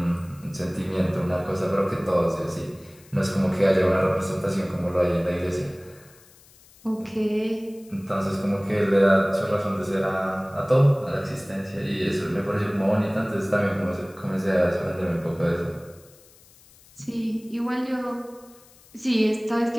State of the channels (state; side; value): noise; left; hiss, 26 dB below the sound